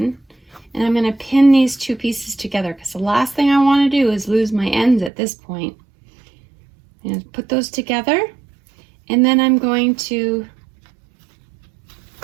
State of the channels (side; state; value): left; drops out; at 5.1 s